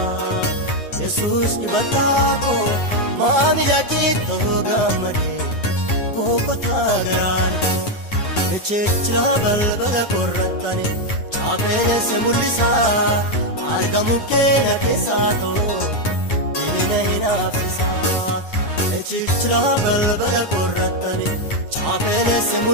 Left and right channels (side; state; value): right; late; 9.7 ms